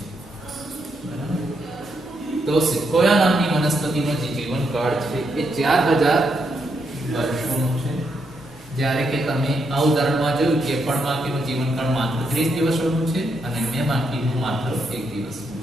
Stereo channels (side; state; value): both; normal; correlation 0.79